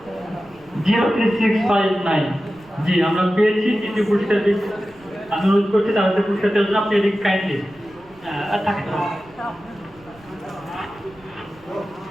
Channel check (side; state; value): right; noise; rumble, 27 dB below the sound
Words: জি, আমরা পেয়েছি তৃতীয় পুরস্কার। আমি অনুরোধ করছি তাদের পুরস্কার দেওয়ার জন্য। আপনি এদিক কাইন্ডলি থাকেন।